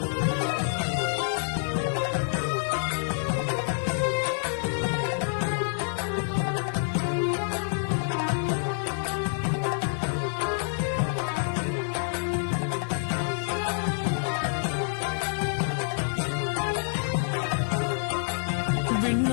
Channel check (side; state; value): right; silent; digital silence